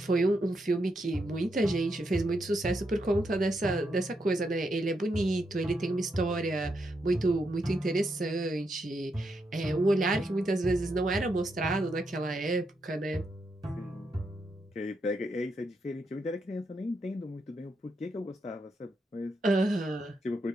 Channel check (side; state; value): both; normal; correlation 0.82